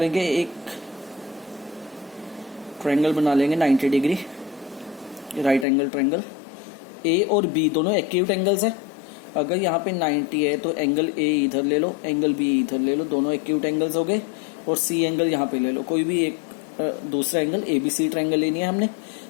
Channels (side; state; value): right; drops out; at 5.7 s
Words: एक ट्रायंगल बना लेंगे 90 डिग्री, राइट एंगल ट्रायंगल। ए और बी दोनों एक्यूट एंगल्स है। अगर यहाँ पे 90 है तो एंगल ए इधर ले लो, एंगल बी इधर ले लो, दोनों एक्यूट एंगल्स हो गए। और सी एंगल यहाँ पे ले लो, कोई भी एक दूसरा angle, A B C triangle लेनी है हमने,